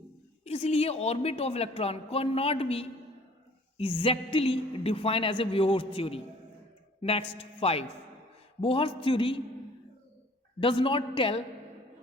इसलिए orbit of electron can not be exactly defined as a Bohr's theory. Next, 5, Bohr's theory does not tell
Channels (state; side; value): normal; both; correlation 0.53